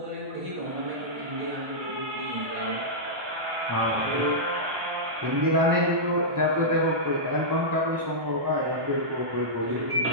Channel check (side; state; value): left; late; 1.2 ms